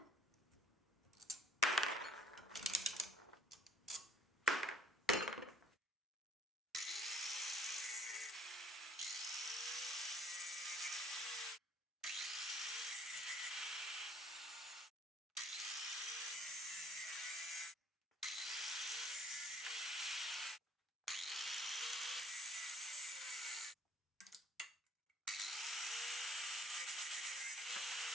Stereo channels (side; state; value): both; normal; correlation 0.57